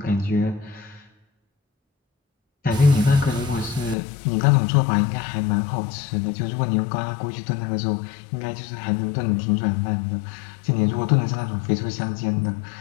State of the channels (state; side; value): drops out; right; at 4.0 s